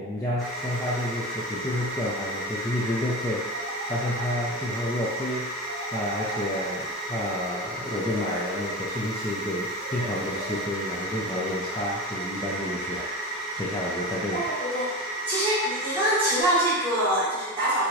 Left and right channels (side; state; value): both; normal; correlation 0.25